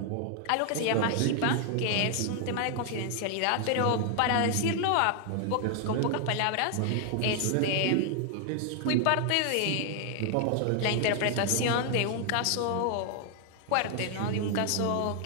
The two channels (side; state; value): both; different; correlation 0.00